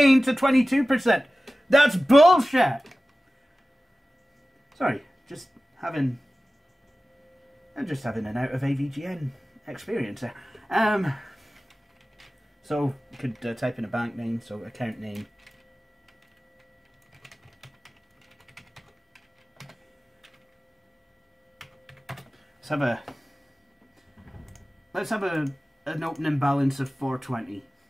to 22%. That's bullshit! Sorry, I'm just having an out of AVGN experience there. So you could type in a bank name, so account name. Let's have an opening balance of 420.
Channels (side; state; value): both; normal; correlation 0.96